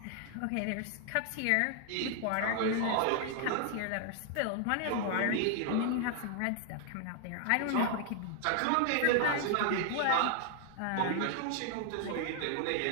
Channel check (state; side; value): different; both; correlation 0.00